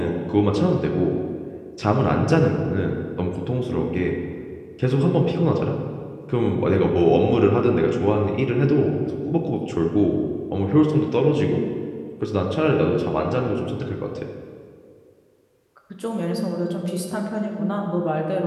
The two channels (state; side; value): identical; both; correlation 1.00